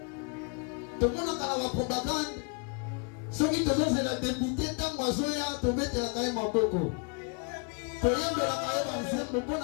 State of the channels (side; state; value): right; quieter; 34.9 dB